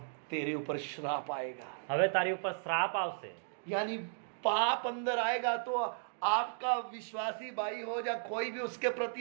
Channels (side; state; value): left; silent; digital silence